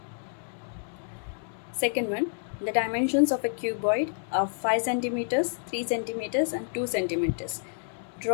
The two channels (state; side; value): silent; right; digital silence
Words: Second one, the dimensions of a cuboid are 5 centimeters, 3 centimeters and 2 centimeters.